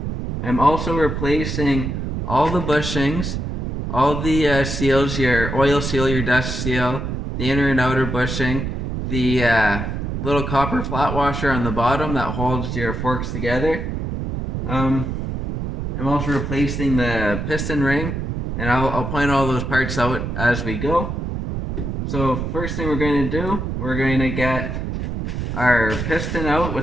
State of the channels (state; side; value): noise; right; rumble, 3 dB below the sound